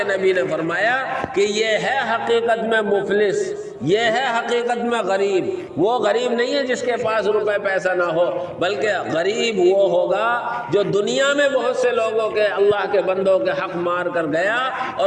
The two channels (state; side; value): identical; both; correlation 1.00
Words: نبی نے فرمایا کہ یہ ہے حقیقت میں مفلس، یہ ہے حقیقت میں غریب۔ وہ غریب نہیں ہے جس کے پاس روپے پیسہ نہ ہو، بلکہ غریب وہ ہوگا جو دنیا میں بہت سے لوگوں کے، اللہ کے بندوں کے حق مار کر گیا،